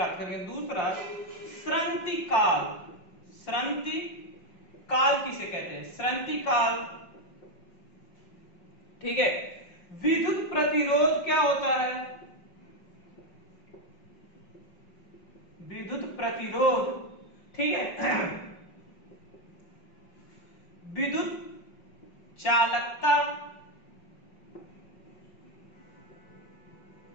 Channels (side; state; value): right; late; 5.4 ms